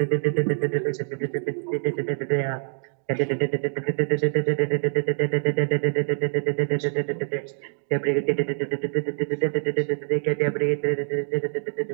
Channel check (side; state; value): left; silent; digital silence